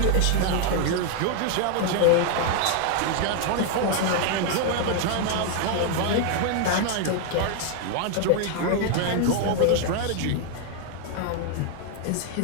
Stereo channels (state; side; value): different; both; correlation 0.00